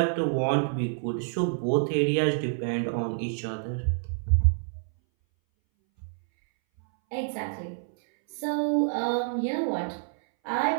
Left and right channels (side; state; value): left; silent; 60 dB below the other